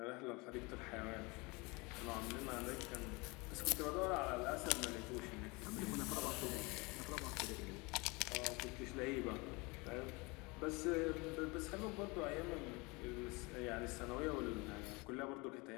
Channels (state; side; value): quieter; right; 26.3 dB